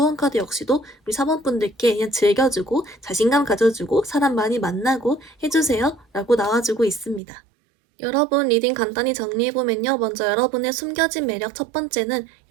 카드 역시도 우리 사번분들께 그냥 즐겨주고 자신감 가져주고 사람 많이 만나고 해주세요 라고 나와주고 있습니다. 여러분 리딩 간단히 정리해보면요. 먼저 여러분의 숨겨진 매력 첫 번째는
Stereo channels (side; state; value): left; drops out; at 7.2 s